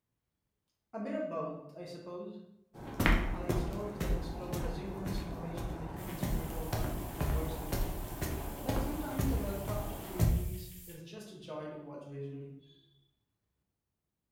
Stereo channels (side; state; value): both; identical; correlation 1.00